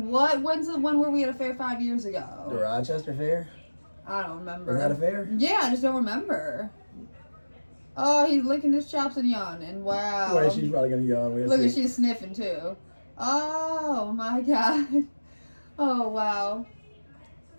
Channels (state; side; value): inverted; both; correlation -1.00